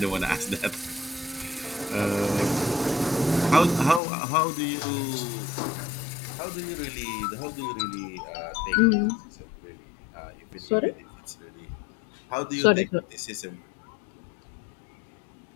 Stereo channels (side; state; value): right; drops out; at 4.0 s